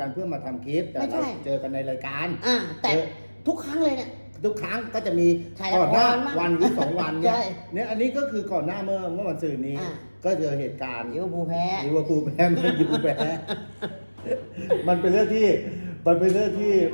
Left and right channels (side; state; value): both; inverted; correlation -1.00